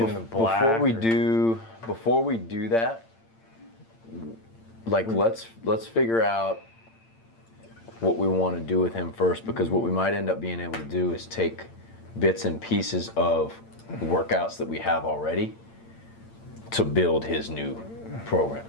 Before we do that, like let's figure out what we want to do with him first, because what we might end up being able to do is take bits and pieces of workouts that we have already to build his new program.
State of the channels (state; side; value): late; right; 8.8 ms